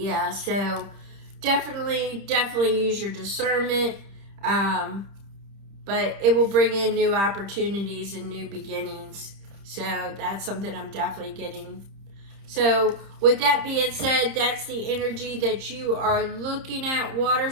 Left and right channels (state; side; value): late; left; 30 ms